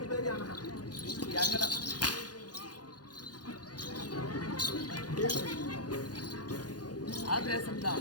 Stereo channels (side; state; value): right; late; 0.69 ms